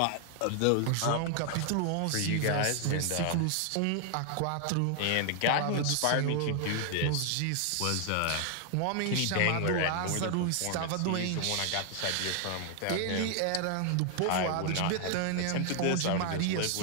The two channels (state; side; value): different; both; correlation 0.00